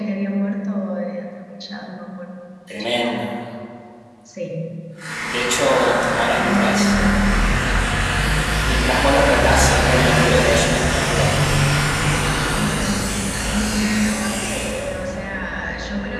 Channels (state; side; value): identical; both; correlation 1.00